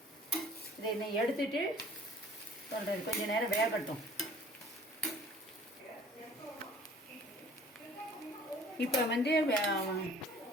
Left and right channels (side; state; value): both; normal; correlation 0.51